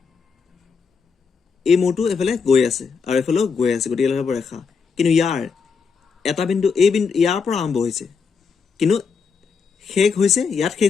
এই মূৰটো এইফালে গৈ আছে আৰু এইফালেও গৈ আছে, গতিকে এইডাল হ'ব ৰেখা। কিন্তু ইয়াৰ এটা বিন্দু, এই বিন্দু ইয়াৰ পৰা আৰম্ভ হৈছে, কিন্তু শেষ হৈছে ইয়াত,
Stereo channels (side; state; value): right; quieter; 5.6 dB